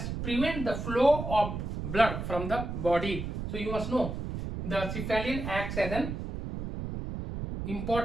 prevent the flow of blood from the body. So you must know the cephalin acts as an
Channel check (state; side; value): noise; right; rumble, 5 dB below the sound